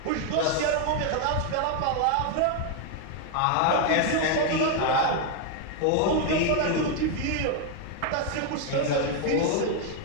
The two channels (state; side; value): different; both; correlation 0.01